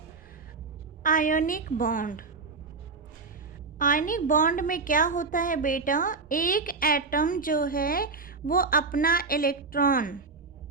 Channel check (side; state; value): left; quieter; 4.3 dB